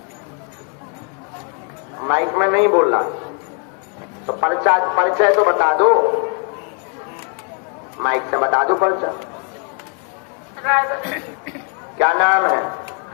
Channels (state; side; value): quieter; right; 35.3 dB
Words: माइक में नहीं बोल रहा तो परिचय तो बता दो, माइक से बता दो परिचय। क्या नाम है?